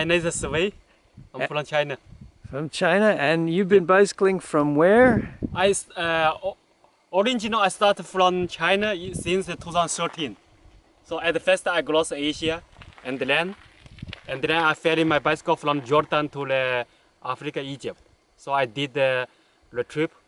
name is Wei. I'm from China. From China, and you've been bicycling from where? Originally I started from China since 2013. So at first I crossed Asia and then I ferried my bicycle from Jordan to Africa, Egypt. So I did the trip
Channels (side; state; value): both; identical; correlation 1.00